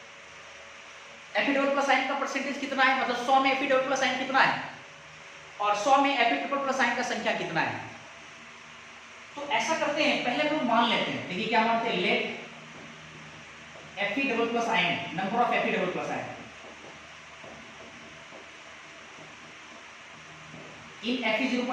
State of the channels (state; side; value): identical; both; correlation 1.00